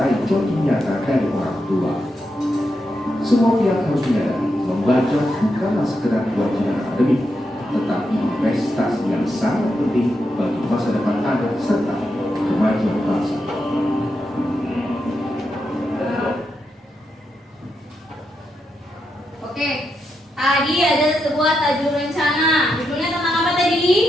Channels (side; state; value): both; normal; correlation 0.84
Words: contoh nyata dari orang tua. Semua pihak harus menyadari membaca bukanlah sekedar kewajiban akademik, tetapi investasi yang sangat penting bagi masa depan anak serta kemajuan bangsa. Oke, tadi ada sebuah tajuk rencana. Judulnya tentang apa